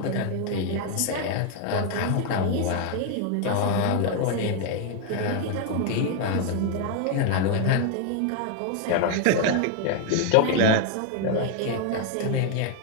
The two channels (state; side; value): different; both; correlation 0.00